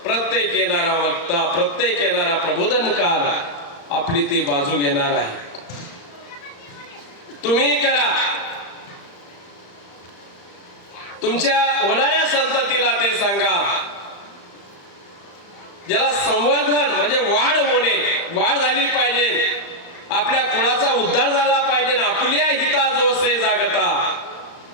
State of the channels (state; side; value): late; right; 35 ms